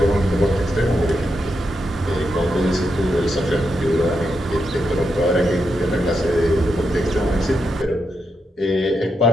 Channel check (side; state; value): both; normal; correlation 0.84